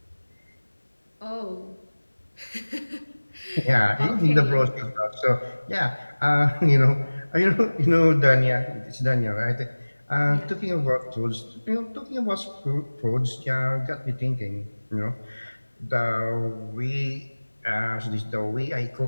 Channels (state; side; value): inverted; both; correlation -1.00